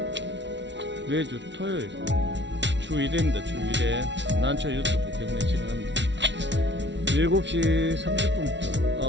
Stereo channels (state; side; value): late; left; 0.52 ms